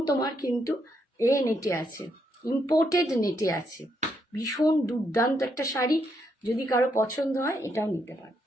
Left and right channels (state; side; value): normal; both; correlation 0.77